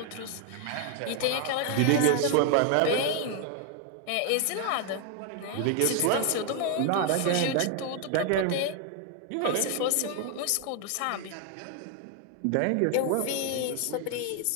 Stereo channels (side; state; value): both; different; correlation 0.01